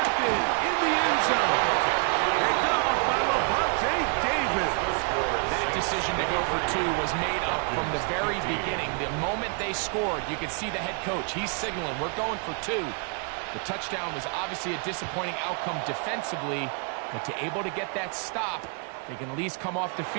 in the end zone. Picked off by Lavonte David. That decision to go for 2 was made up from the very beginning. The moment they scored, you could see the head coach. He's signaling, we're going for 2. The touchdown was obviously a disappointing outcome defensively, but to able to get that stop, they can at least come off the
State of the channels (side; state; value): left; quieter; 38.8 dB